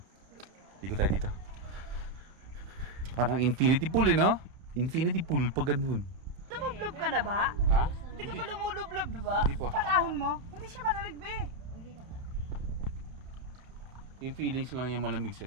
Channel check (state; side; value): late; left; 31 ms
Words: Dito tayo dito. Parang infinity pool eh, no? Infinity pool pag ganun. Lumublob ka na ba? Ha? Hindi ka pa lumulublob, di ba? Hindi pa. Pag-ahon mo, hindi siya malamig, be. Yung feelings lang yung malamig sa